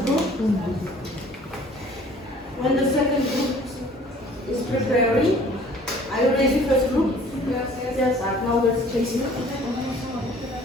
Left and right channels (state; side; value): normal; both; correlation 0.52